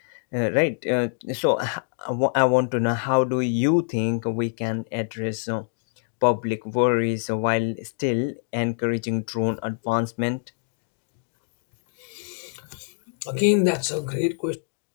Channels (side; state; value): right; silent; digital silence